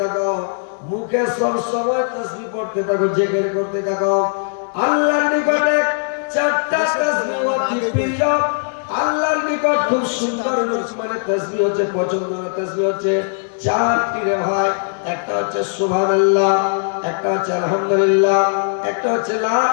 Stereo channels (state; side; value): silent; right; digital silence